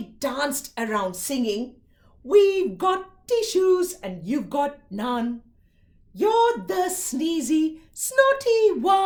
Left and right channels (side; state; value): both; identical; correlation 1.00